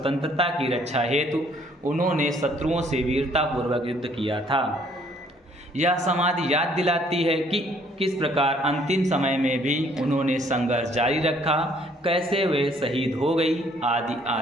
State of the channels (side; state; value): both; normal; correlation 0.62